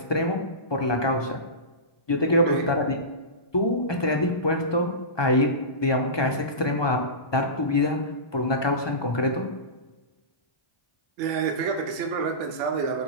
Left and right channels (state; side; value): late; right; 1.2 ms